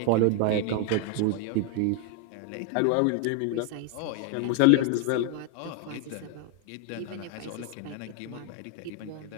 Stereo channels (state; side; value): different; both; correlation 0.01